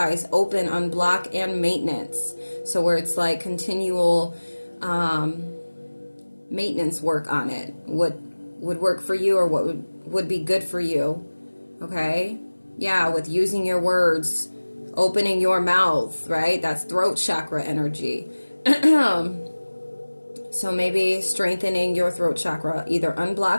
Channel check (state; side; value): inverted; both; correlation -1.00